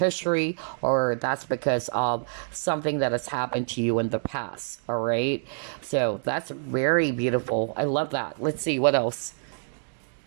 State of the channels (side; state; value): left; silent; digital silence